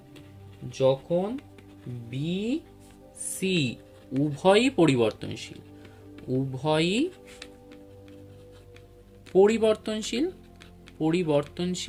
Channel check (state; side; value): identical; both; correlation 1.00